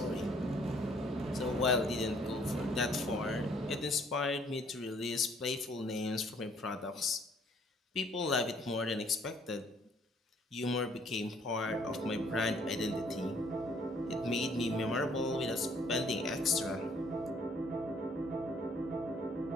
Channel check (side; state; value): both; normal; correlation 0.62